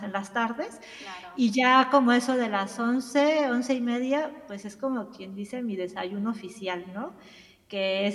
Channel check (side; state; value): both; identical; correlation 1.00